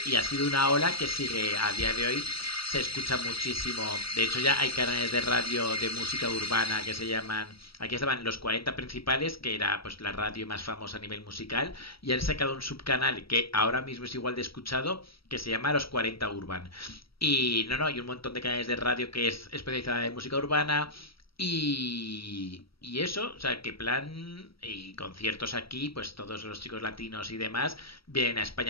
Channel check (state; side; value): late; right; 0.75 ms